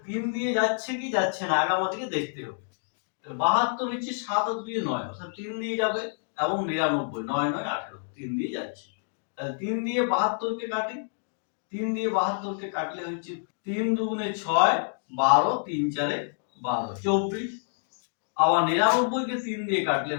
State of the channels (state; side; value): silent; right; digital silence